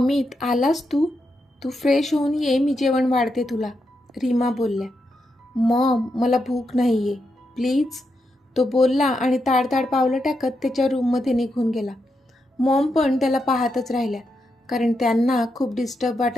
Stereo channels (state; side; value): normal; both; correlation 0.84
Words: आलास तू? तू फ्रेश होऊन ये, मी जेवण वाढते तुला, रीमा बोलल्या. मॉम, मला भूक नाही आहे, प्लीज, तो बोलला आणि ताडताड पावलं टाकत त्याच्या रूममध्ये निघून गेला. मॉम पण त्याला पाहतच राहिल्या, कारण त्यांना खूप डिस्टर्ब